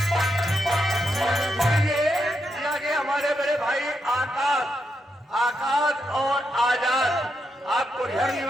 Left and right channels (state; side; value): normal; both; correlation 0.82